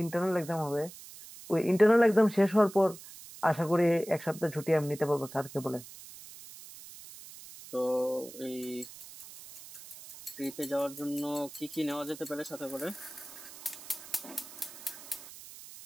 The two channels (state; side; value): noise; right; hiss, 16 dB below the sound